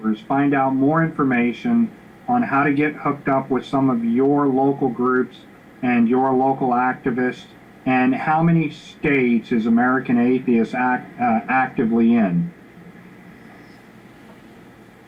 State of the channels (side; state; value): both; identical; correlation 1.00